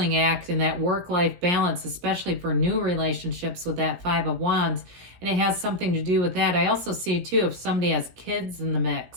act in that work-life balance, especially for new relationships with that Five of Wands. And it has something to do with that. I also see, too, if somebody has kids in the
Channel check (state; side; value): late; left; 17 ms